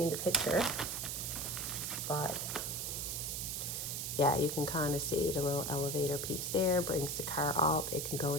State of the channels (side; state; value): right; noise; hiss, 3 dB below the sound